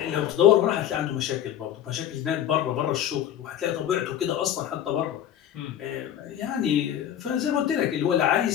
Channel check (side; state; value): right; quieter; 10.6 dB